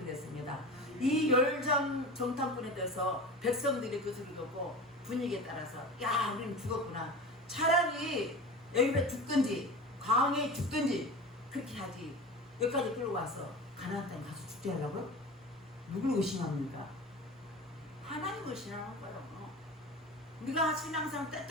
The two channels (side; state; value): both; normal; correlation 0.33